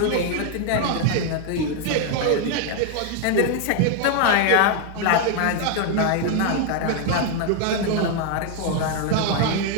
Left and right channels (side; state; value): both; different; correlation 0.00